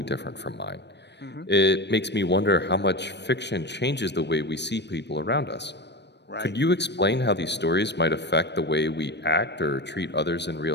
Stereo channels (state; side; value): late; right; 0.50 ms